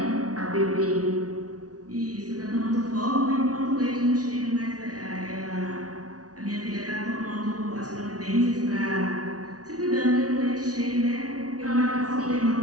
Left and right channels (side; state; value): left; late; 0.68 ms